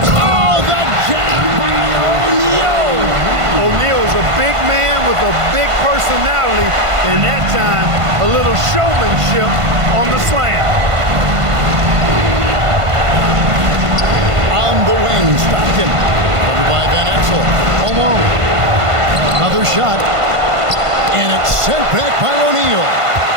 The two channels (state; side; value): late; left; 1.5 ms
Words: Oh, the jam by O'Neal! O'Neal is a big man with a big personality, and that time a little showmanship on the slam. On the wing, Stockton. Covered by Van Exel. Alone. Another shot. And it's sent back by O'Neal.